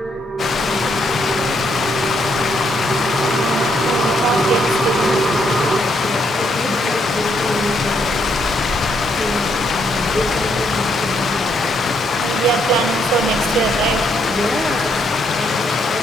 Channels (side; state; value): both; normal; correlation 0.74